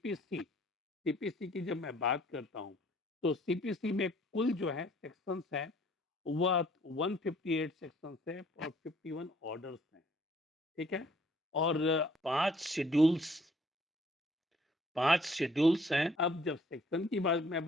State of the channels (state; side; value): normal; both; correlation 0.59